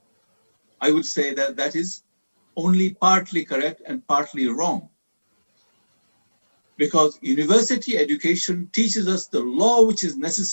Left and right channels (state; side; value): inverted; both; correlation -1.00